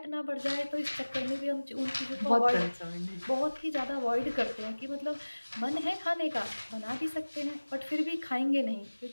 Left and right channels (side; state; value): both; inverted; correlation -1.00